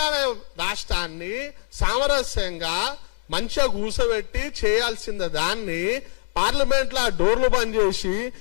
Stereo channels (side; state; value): right; silent; digital silence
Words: రాష్ట్రాన్ని సామరస్యంగా మంచిగా కూసబెట్టి చేయాల్సిన దాన్ని పార్లమెంట్ లో డోర్లు బంద్ చేసి